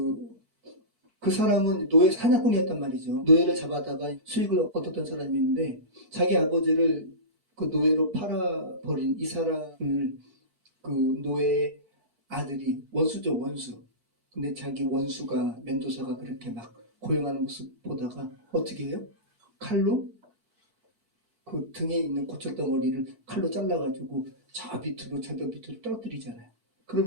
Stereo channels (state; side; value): late; left; 4.5 ms